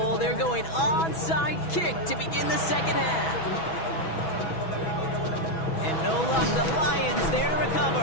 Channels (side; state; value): right; late; 6.1 ms